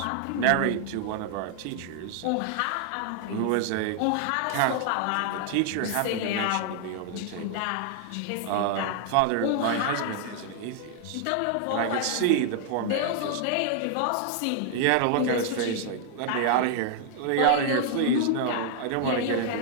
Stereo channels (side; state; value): both; different; correlation 0.00